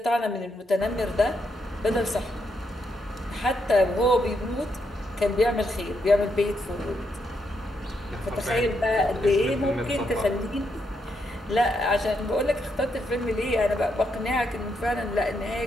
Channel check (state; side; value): normal; both; correlation 0.79